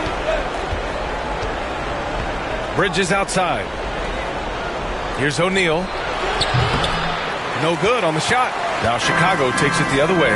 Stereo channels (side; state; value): both; identical; correlation 1.00